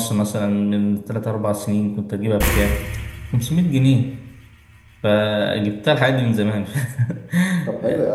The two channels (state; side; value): identical; both; correlation 1.00